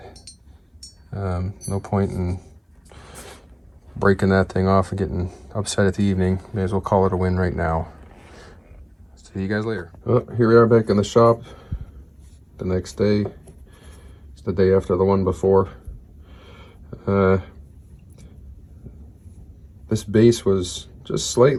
No point in breaking that thing off and getting upset at the evening. May as well call it a win right now. See you guys later. Oh, here we are back in the shop. The next day, it's the day after the one before. This base was just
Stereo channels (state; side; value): identical; both; correlation 1.00